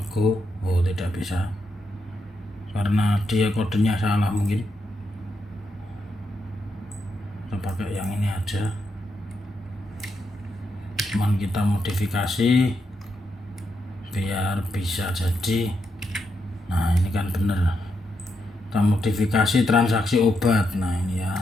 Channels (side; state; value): both; normal; correlation 0.82